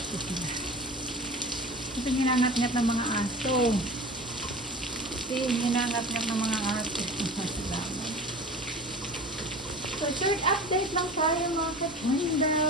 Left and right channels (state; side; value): normal; both; correlation 0.36